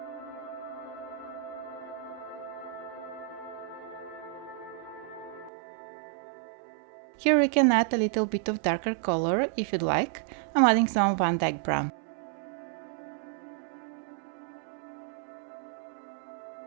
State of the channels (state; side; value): drops out; left; at 5.5 s